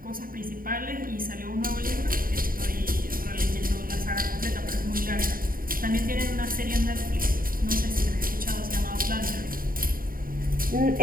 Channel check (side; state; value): left; late; 0.41 ms